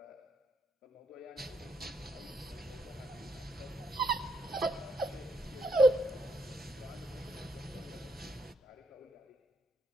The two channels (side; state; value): both; normal; correlation 0.75